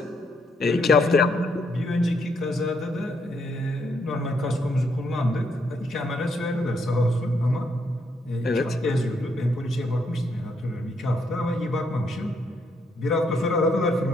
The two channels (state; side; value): normal; both; correlation 0.75